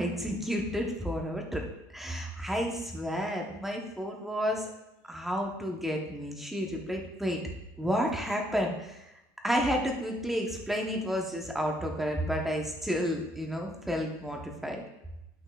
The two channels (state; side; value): normal; both; correlation 0.71